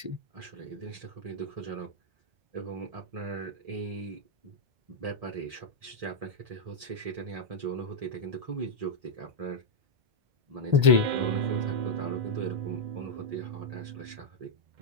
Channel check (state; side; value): late; left; 1.3 ms